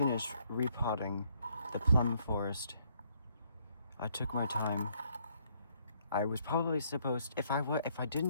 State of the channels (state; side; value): inverted; both; correlation -0.69